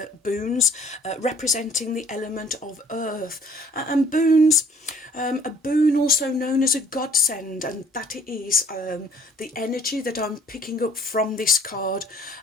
boons representing the element of earth. And boons, a boon also known as a godsend, and that is the energy that I'm picking up from this card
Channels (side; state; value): both; normal; correlation 0.56